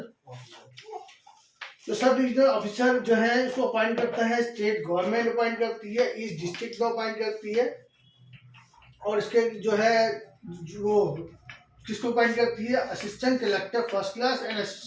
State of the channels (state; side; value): identical; both; correlation 1.00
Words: officer. तो सब डिविजनल ऑफिसर जो है उसको अपॉइंट करता है स्टेट गवर्नमेंट अपॉइंट करती है, ईस्ट डिस्ट्रिक्ट को अपॉइंट करती है। और इसके जो है वो किसको अपॉइंट करती है, assistant collector first class and